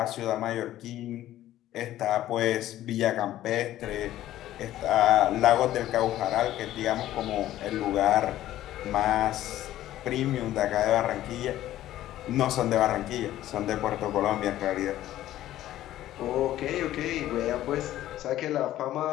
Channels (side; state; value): right; quieter; 13.7 dB